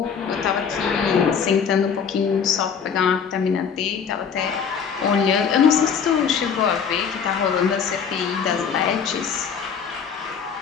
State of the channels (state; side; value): quieter; right; 6.8 dB